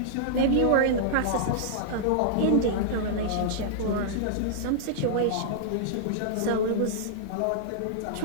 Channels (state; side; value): different; both; correlation -0.01